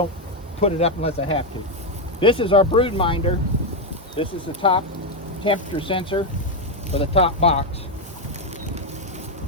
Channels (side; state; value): both; normal; correlation 0.05